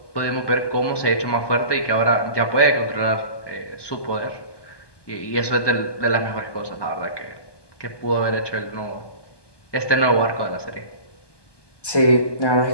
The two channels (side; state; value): right; late; 1.2 ms